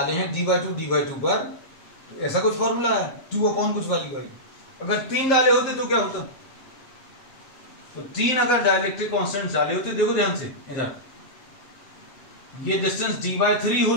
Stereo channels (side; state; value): right; late; 7.6 ms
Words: हैं d/2 पर, तो ऐसा कुछ फॉर्मूला है 2 कुछ वैल्यू आई। अगर 3 डाले होते तो क्या होता? तो 3 अगर डाइलेक्ट्रिक कांस्टेंट डाले होते, देखो ध्यान से इधर, ये डिस्टेंस d/3